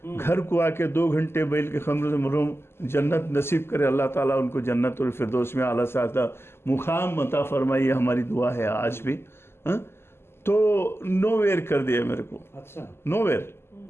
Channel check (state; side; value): late; right; 0.12 ms